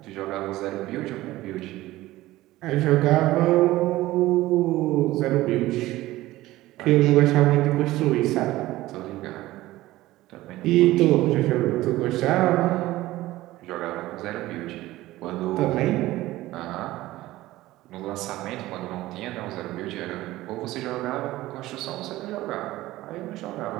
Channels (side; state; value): left; quieter; 17.0 dB